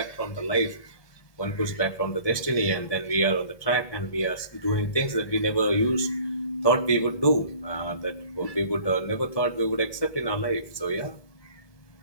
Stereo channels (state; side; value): late; right; 1.7 ms